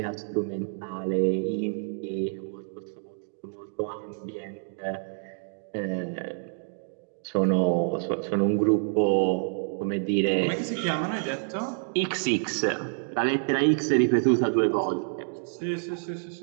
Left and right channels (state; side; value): silent; left; digital silence